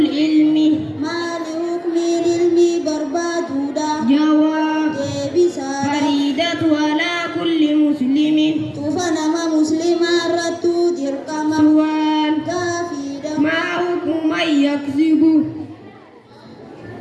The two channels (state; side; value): identical; both; correlation 1.00